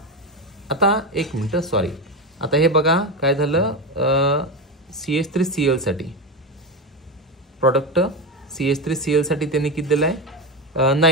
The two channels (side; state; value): both; normal; correlation 0.16